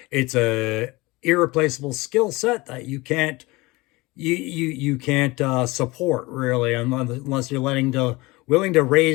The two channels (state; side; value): quieter; right; 22.4 dB